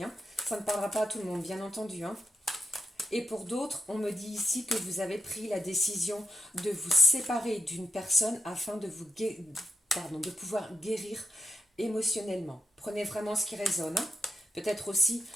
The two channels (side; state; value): both; normal; correlation 0.86